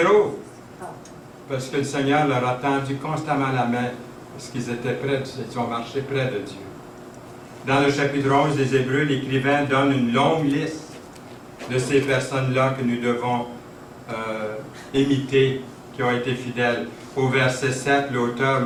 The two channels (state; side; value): identical; both; correlation 1.00